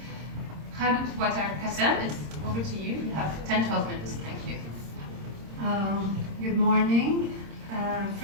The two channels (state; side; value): late; left; 26 ms